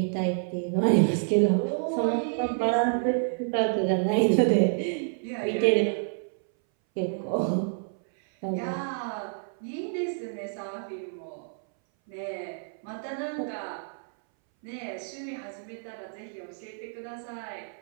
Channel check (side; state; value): left; silent; 59 dB below the other